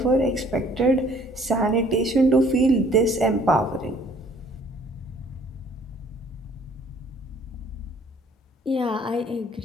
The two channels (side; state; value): both; normal; correlation 0.58